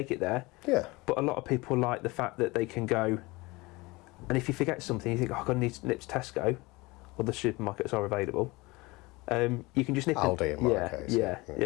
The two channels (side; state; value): right; quieter; 23.0 dB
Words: it there. Yeah. But a lot of people like the fact that they can go, and if you forget something, you think, oh, I'm going to need to nip to Tesco, or the supermarkets are available. You can just nip Aldi in. in my case.